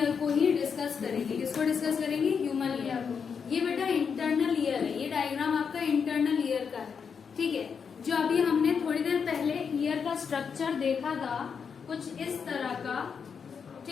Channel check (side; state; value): right; quieter; 6.3 dB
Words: को ही डिस्कस करेंगे। किसको डिस्कस करेंगे? ह्यूमन ईयर को। ये बेटा इंटरनल ईयर है, ये डायग्राम आपका इंटरनल ईयर का है, ठीक है। जो अभी हमने थोड़ी देर पहले ईयर का स्ट्रक्चर देखा था कुछ इस तरह का,